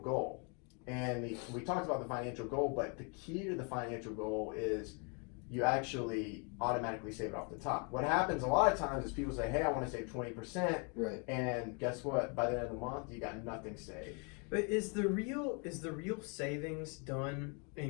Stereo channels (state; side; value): quieter; right; 35.7 dB